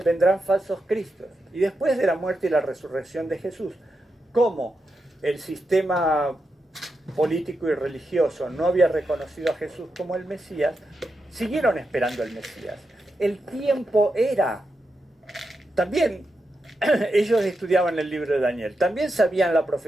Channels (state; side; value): normal; both; correlation 0.87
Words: falsos cristos. Y después de la muerte y la resurrección de Jesús, como el sistema político y religioso no había reconocido a Jesús como el Mesías, siguieron esperando al Mesías. El tiempo era. También ellos estudiaban el libro de Daniel, también sabían la